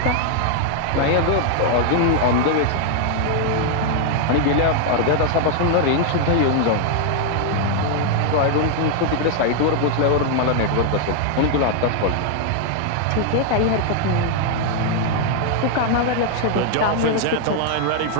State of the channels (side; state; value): both; different; correlation 0.00